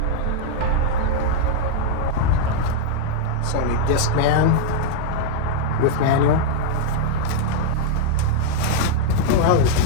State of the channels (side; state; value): both; different; correlation -0.01